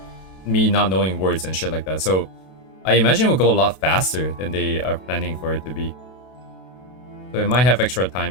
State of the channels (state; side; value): late; right; 32 ms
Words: me not knowing words and shit like that. So I imagine it will go a lot faster than they are planning for it to be. So it might have extra